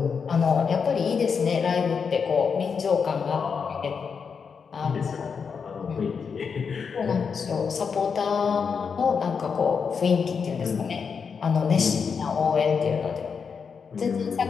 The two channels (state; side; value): quieter; right; 6.0 dB